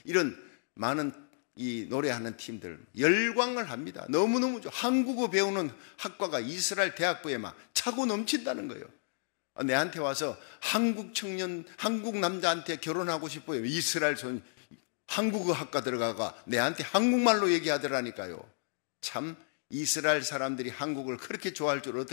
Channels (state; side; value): silent; right; digital silence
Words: 이런 많은 이 노래하는 팀들 열광을 합니다. 너무너무 좋아. 한국어 배우는 학과가 이스라엘 대학부에 막 차고 넘친다는 거예요. 내한테 와서 한국 청년, 한국 남자한테 결혼하고 싶어요. 이스라엘 한국어 학과 들어가가 내한테 한국말로 얘기하더라니까요. 참 이스라엘 사람들이 한국을 그렇게 좋아할 줄